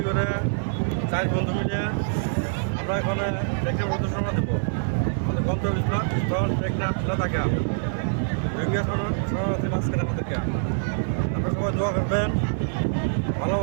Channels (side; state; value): left; silent; digital silence